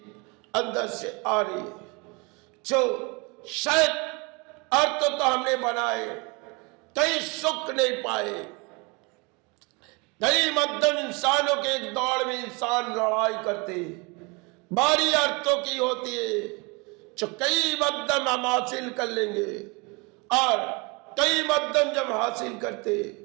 अंदर से आ रही है जो शायद अर्थ तो हमने बनाए, कई सुख नहीं पाए। कई मध्यम इंसानों के एक दौड़ में इंसान लड़ाई करते, बारी अर्थों की होती है जो कई मध्यम हम हासिल कर लेंगे और कई मध्यम जब हासिल करते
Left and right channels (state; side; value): quieter; left; 28.9 dB